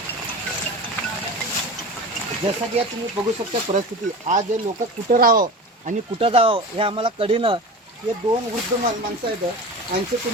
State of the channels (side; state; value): both; normal; correlation 0.31